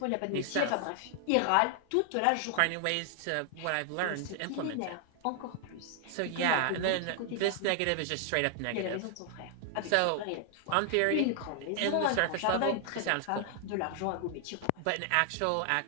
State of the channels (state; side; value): different; both; correlation 0.00